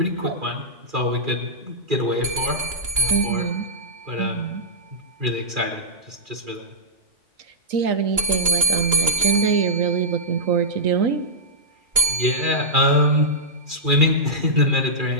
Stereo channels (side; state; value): left; late; 2.8 ms